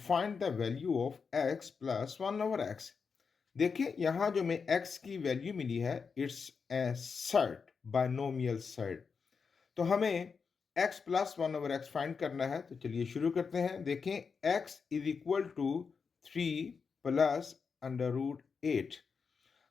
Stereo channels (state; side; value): quieter; right; 5.5 dB